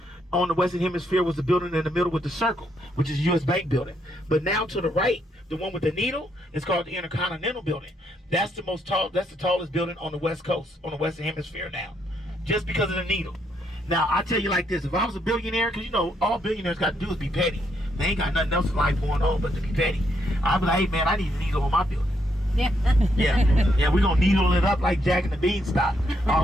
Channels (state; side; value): normal; both; correlation 0.75